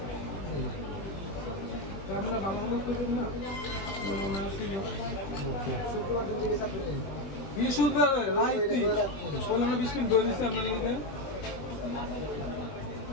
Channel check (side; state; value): right; late; 20 ms